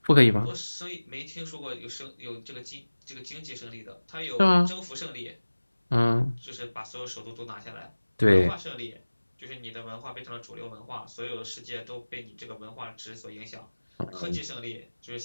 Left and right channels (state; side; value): inverted; both; correlation -1.00